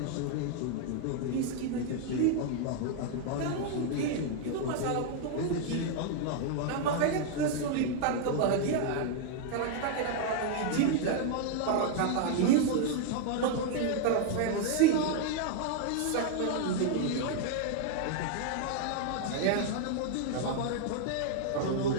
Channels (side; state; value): both; different; correlation 0.00